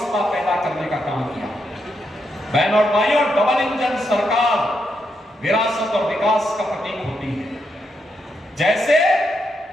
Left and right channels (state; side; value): normal; both; correlation 0.81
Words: पैदा करने का काम किया। बहन और भाइयों, डबल इंजन सरकार विरासत और विकास का प्रतीक होती है। जैसे